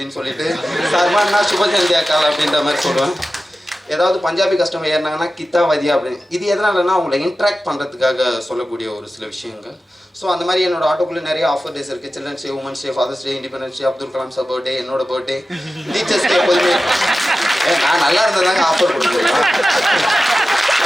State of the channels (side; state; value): both; normal; correlation 0.94